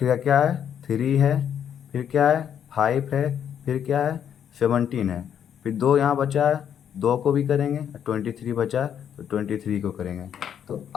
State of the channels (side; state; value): right; quieter; 8.9 dB